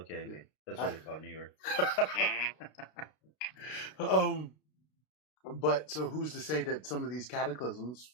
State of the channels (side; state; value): right; late; 32 ms